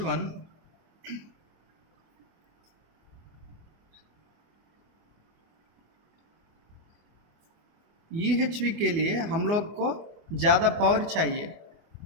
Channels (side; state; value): left; late; 24 ms